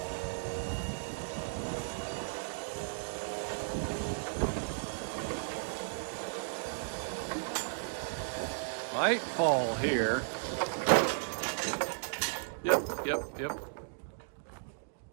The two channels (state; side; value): silent; left; digital silence